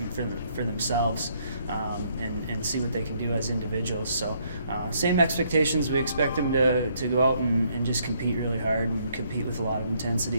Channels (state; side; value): inverted; both; correlation -0.69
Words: for themselves. And see what they can do as individuals. So same expectations. We expect them to go out and just compete really hard and compete with a lot of